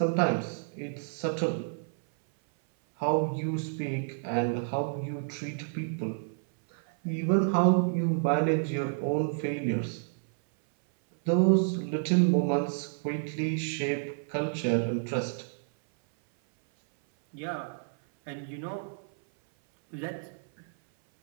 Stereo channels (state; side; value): silent; left; 57 dB below the other